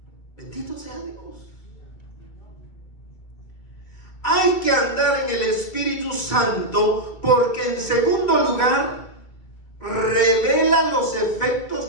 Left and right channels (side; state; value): right; late; 1.9 ms